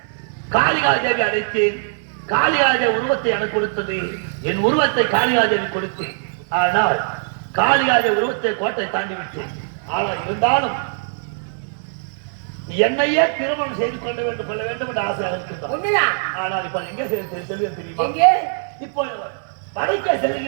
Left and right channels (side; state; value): left; silent; 55 dB below the other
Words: காளிகாதேவி அழைத்தேன். காளிகாதேவி உருவத்தை எனக்கு கொடுத்தது, என் உருவத்தை காளிகாதேவி கொடுத்தேன். ஆனால் காளிகாதேவி உருவத்தை கோட்டை தாண்டி விட்டேன். ஆனால் இருந்தாலும் என்னையே திருமணம் செய்து கொள்ள வேண்டும் என்று ஆசை இருக்கின்றார். ஆனால் இப்ப எங்க செல்வது தெரியுமா? இப்போ வடக்கே